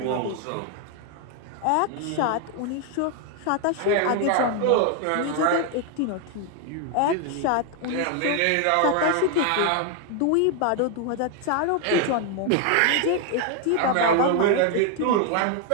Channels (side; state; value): both; different; correlation 0.00